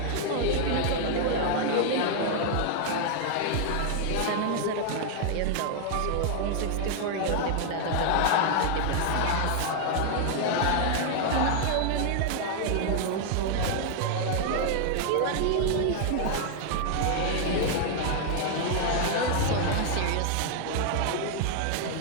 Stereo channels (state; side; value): different; both; correlation 0.00